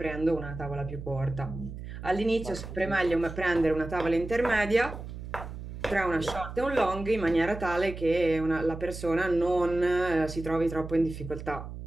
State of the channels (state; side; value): noise; right; hum, 10 dB below the sound